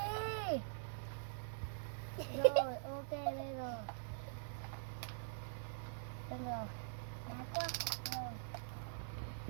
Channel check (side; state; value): left; silent; digital silence